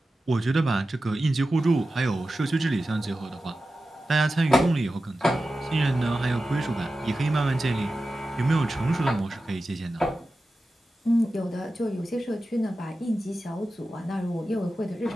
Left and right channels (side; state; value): both; normal; correlation 0.93